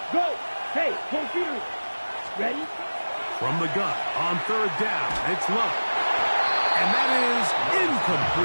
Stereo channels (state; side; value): inverted; both; correlation -1.00